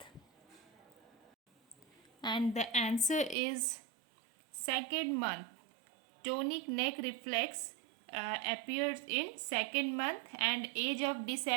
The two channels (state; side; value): drops out; left; at 3.4 s